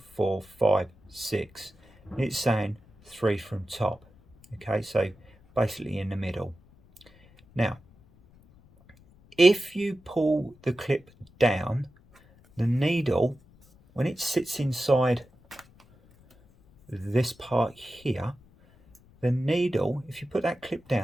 4, 5, 6. It's saying 3 from top. Okay, so basically in the middle. Now, if you pull the clip down, the needle, when it sits inside this part here, the needle, if you put that clip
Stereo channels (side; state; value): left; noise; rumble, 28 dB below the sound